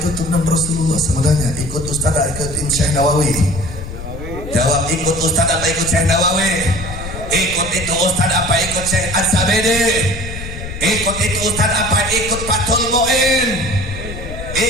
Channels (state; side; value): noise; left; rumble, 9 dB below the sound